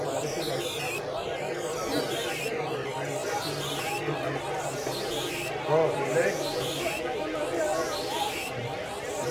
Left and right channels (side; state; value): both; identical; correlation 1.00